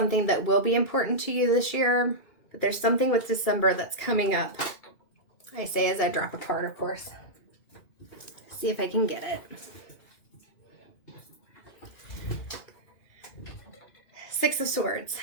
that will be important to you this year. But there's something with December that's coming up. I say as I drop a card, of course. See if I can get it. 6 of Swords.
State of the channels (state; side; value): late; right; 2.5 ms